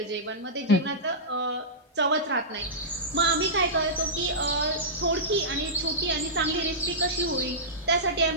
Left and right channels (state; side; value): normal; both; correlation -0.14